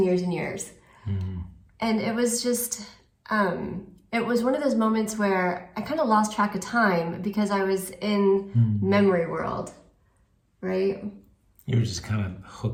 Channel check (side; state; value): both; identical; correlation 1.00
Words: years and years. Mm-hmm. And it was just, it was one of those moments where I kind of lost track of time because I was in memory world, right? You were just kind of